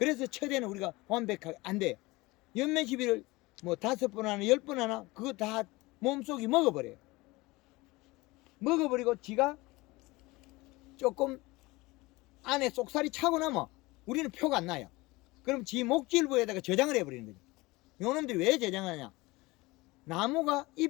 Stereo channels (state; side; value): quieter; right; 22.0 dB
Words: 처제는 우리가 완벽하게 안 돼요. 연매시비를 뭐 5번 하나 10번 하나 그거 다 몸속이 먹어버려요. 먹어버리고 지가 조금 안에 쏙살이 차고 나면 우리는 표가 안 나요. 그럼 지 목질부에다가 저장을 해버리는 거죠. 요놈들이 왜 저장하냐? 나무가